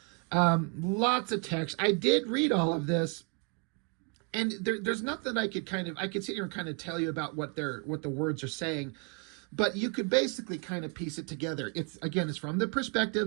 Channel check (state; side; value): quieter; left; 32.9 dB